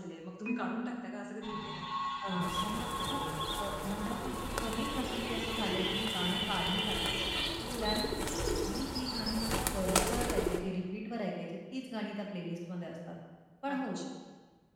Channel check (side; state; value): both; identical; correlation 1.00